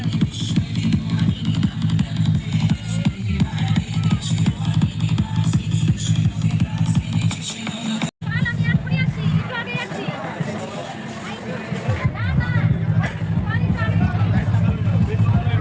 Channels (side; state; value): both; identical; correlation 1.00